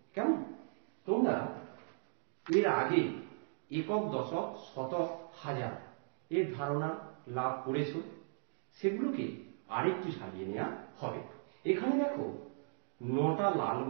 কেমন? তোমরা এর আগে একক, দশক, শতক, হাজার এর ধারণা লাভ করেছ, সেগুলোকে আরেকটু সাজিয়ে নেওয়া হবে। এখানে দেখো 9টা লাল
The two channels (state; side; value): silent; left; digital silence